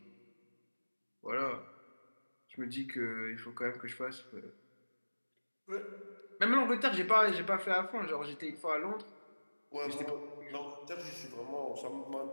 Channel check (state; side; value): inverted; both; correlation -1.00